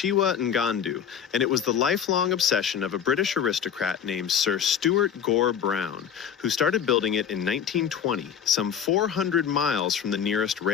Ngandu, and it was the lifelong obsession of a British aristocrat named Sir Stuart Gore Brown, who started building it in 1920, some 400 miles from the nearest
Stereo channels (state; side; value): quieter; right; 8.2 dB